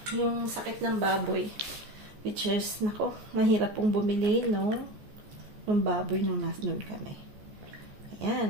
Yung sakit ng baboy. Which is, nako, mahirap pong bumili, no? Yung baboy nung nandun kami.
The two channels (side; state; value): left; late; 14 ms